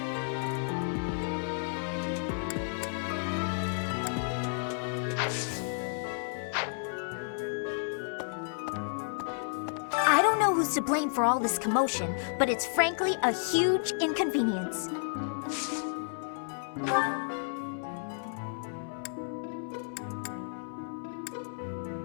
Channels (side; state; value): right; silent; 57 dB below the other